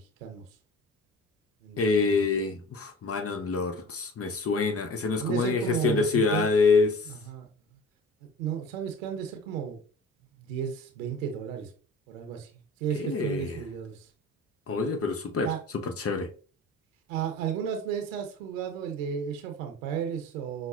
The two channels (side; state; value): both; normal; correlation 0.41